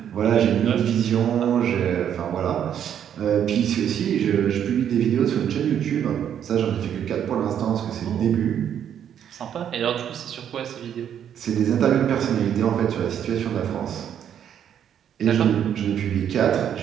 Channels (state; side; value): quieter; left; 9.3 dB